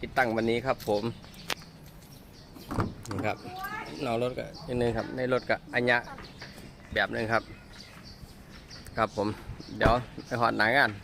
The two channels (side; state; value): both; identical; correlation 1.00